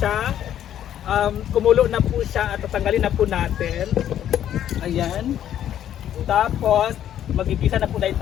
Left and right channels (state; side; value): quieter; right; 10.8 dB